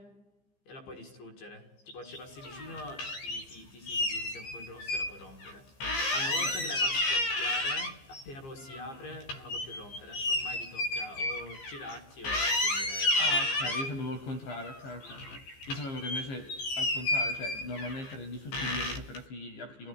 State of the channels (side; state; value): right; late; 15 ms